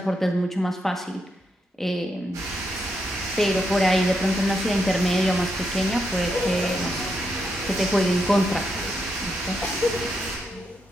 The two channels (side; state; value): both; normal; correlation 0.81